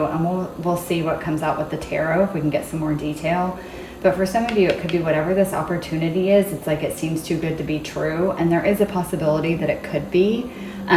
and we'll see what comes out with the tarot if we can get some more detail. But for some of you, it could be whatever this opportunity is. It's like it seems too good to be true, and there is a possibility that it could be.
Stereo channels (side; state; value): both; identical; correlation 1.00